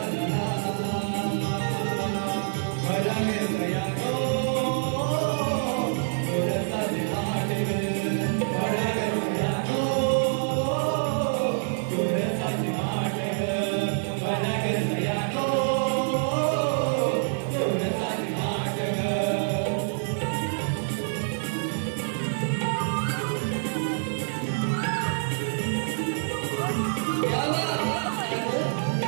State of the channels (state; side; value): silent; left; digital silence